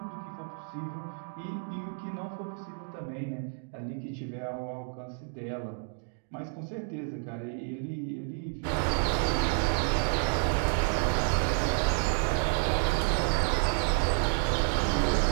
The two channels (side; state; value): left; silent; 58 dB below the other